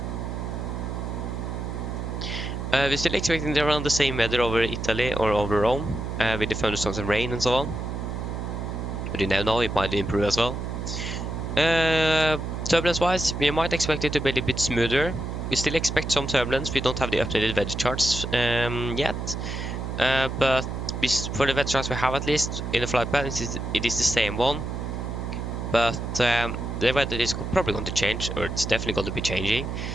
We're still expecting around the same weather over Italy or over Rome, with the thunderstorms and rain and so on. But you never know, it might improve as well. Turbulence-wise, we might expect it to be a little bit smoother. We still expect some turbulence. We don't have the updated weather charts yet. But for the weather charts we have, at least in the flight plan, it is the same one. But the weather is probably going to change, or it's definitely going to be changing.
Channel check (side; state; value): right; noise; hum, 5 dB below the sound